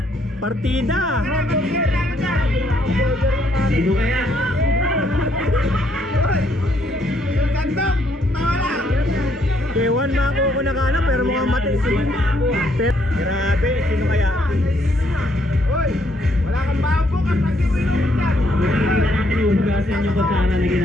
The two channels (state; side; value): normal; both; correlation 0.71